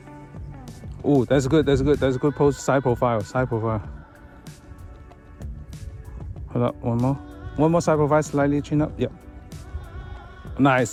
Oh, that's good. That's good. That's a good pose. Side profile. Side profile. Hold up. One more. One more side profile. Slightly chin up. Yep.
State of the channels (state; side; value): identical; both; correlation 1.00